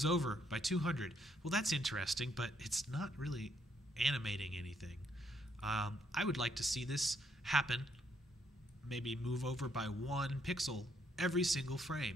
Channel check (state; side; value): normal; both; correlation 0.72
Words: over by 200. Well, that's interesting, but it's not really animating anything. I would like to see this happen, maybe move over by 1 pixel every single